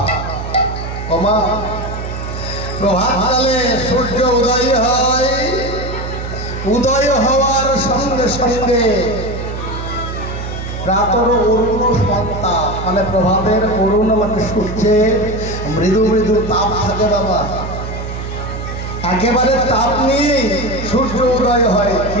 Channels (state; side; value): noise; right; hum, 7 dB below the sound